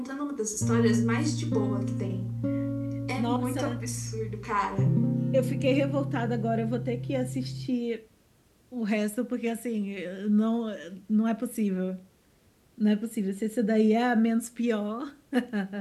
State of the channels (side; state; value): both; identical; correlation 1.00